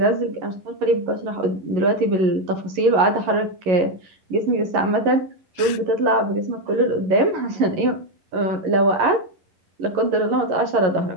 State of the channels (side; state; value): left; late; 11 ms